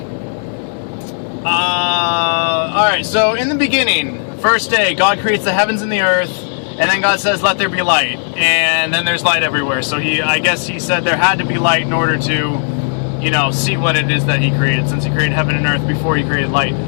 Alright, so in the beginning, first day, God creates the heavens and the earth, and then God says, let there be light. And then there's light everywhere. So I guess he said there had to be light in order to, see what it is that he created, since he created heaven and earth before he created light.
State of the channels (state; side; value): silent; right; digital silence